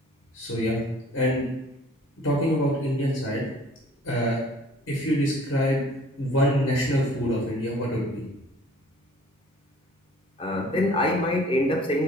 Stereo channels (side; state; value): both; normal; correlation 0.53